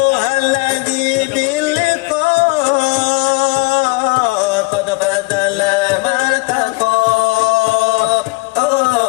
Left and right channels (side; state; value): right; quieter; 27.4 dB